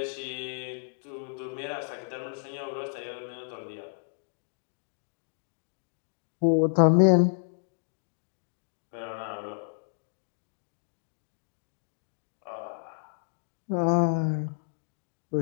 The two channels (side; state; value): right; silent; digital silence